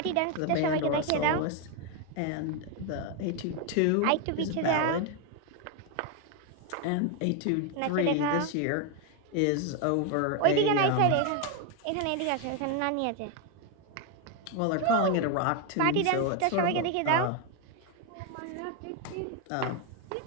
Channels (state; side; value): different; both; correlation 0.01